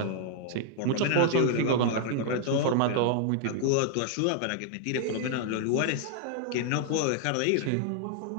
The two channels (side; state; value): both; different; correlation 0.00